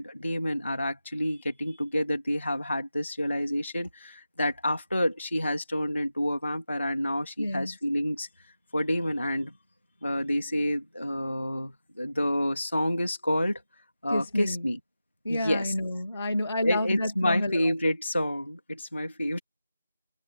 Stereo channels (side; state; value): both; inverted; correlation -0.93